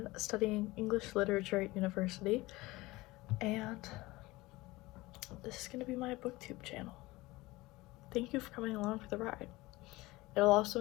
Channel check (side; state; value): right; quieter; 20.3 dB